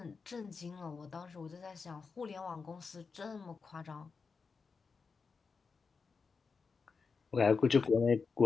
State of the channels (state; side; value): quieter; right; 5.0 dB